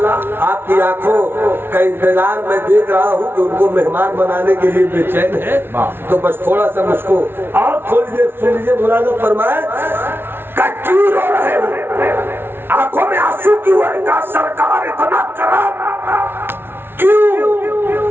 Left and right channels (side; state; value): left; late; 0.11 ms